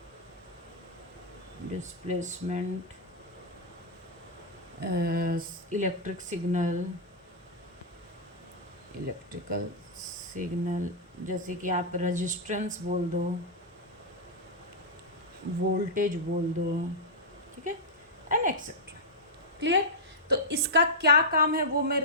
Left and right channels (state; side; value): normal; both; correlation -0.07